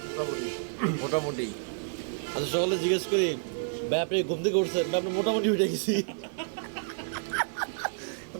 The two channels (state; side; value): silent; left; 58 dB below the other